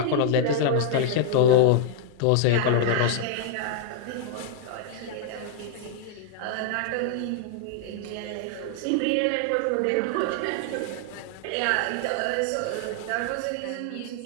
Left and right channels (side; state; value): both; different; correlation 0.00